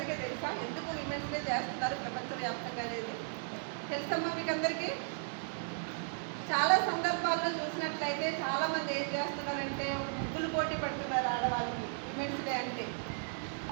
తెలుసా? ఎందుకు విమెన్స్ డే చేస్తున్నారు ప్రపంచవ్యాప్తంగా అనేది తెలుసమ్మా మీకు అందరికీ? చాలా సందర్భాల్లో చూసినట్లయితే చాలామంది ఏం చేస్తున్నారంటే ముగ్గులు పోటీ పెడుతున్నారు ఆడవాళ్ళకి విమెన్స్ డే అంటే,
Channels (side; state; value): left; silent; digital silence